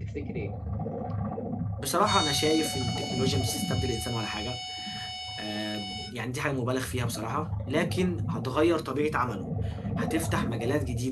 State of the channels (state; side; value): identical; both; correlation 1.00